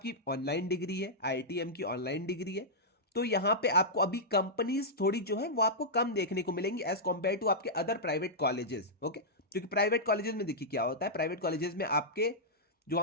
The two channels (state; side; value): normal; both; correlation -0.10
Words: ऑनलाइन डिग्री है, आईआईटीएम की ऑनलाइन डिग्री है। तो यहाँ पे आपको अभी कंपनीज थोड़ी जो है वो आपको कम देखने को मिलेंगी एज कॉम्पेयर टू आपके अदर प्राइवेट कॉलेजेस। ओके, क्योंकि प्राइवेट कॉलेजेस में देखिए क्या होता है, प्राइवेट कॉलेजेस में आपके जो